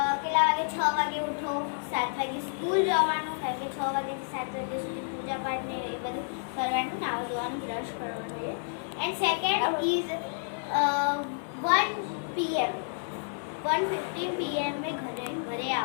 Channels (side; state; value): right; silent; 58 dB below the other